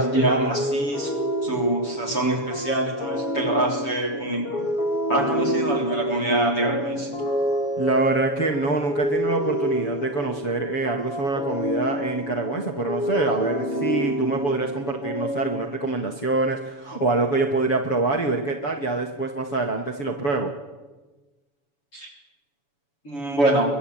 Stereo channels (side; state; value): right; late; 7.0 ms